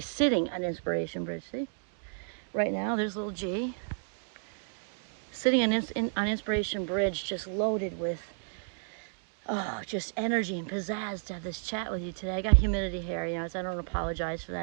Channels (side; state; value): left; silent; digital silence